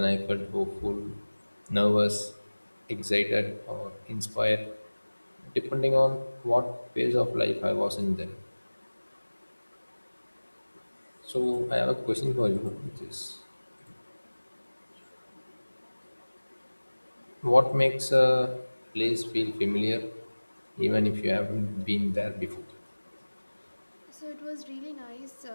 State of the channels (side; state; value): both; inverted; correlation -1.00